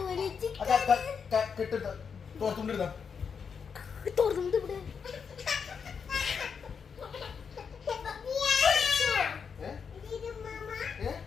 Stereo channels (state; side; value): quieter; right; 6.3 dB